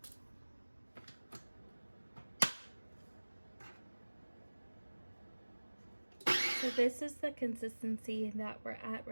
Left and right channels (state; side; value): inverted; both; correlation -1.00